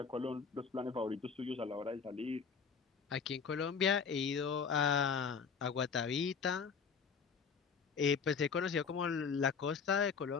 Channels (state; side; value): quieter; right; 5.9 dB